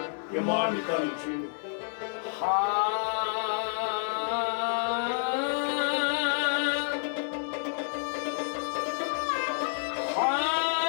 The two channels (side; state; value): right; silent; 57 dB below the other